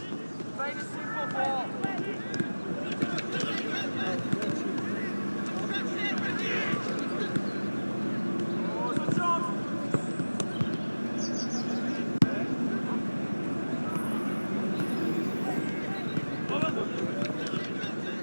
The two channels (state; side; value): inverted; both; correlation -1.00